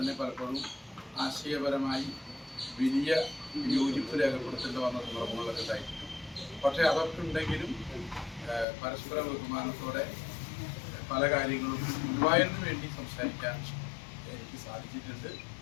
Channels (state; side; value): drops out; right; at 8.7 s